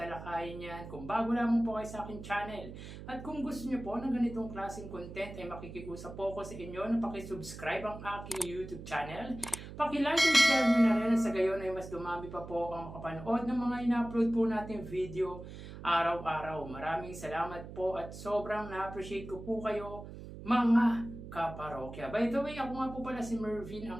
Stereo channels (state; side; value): noise; right; hum, 12 dB below the sound